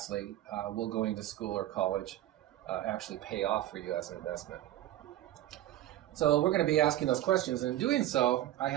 will going to school or college actually pay off for you as an investment? So we're going to be asking those questions, and in doing so, I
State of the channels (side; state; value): left; quieter; 14.0 dB